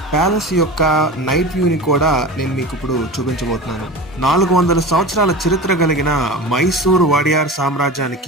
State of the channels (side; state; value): both; normal; correlation 0.31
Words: ప్యాలెస్ యొక్క నైట్ వ్యూ ని కూడా నేను మీకు ఇప్పుడు చూపించబోతున్నాను. 400 సంవత్సరాల చరిత్ర కలిగిన మైసూర్ వాడియార్